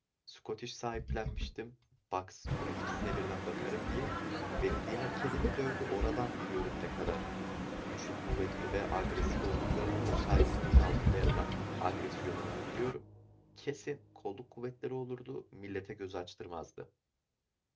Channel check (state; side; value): identical; both; correlation 1.00